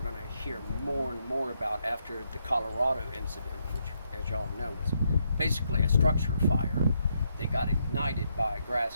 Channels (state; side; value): inverted; both; correlation -0.78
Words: going to hear more and more about after the Colorado incident, which, as y'all know, was basically a structure fire that got ignited by a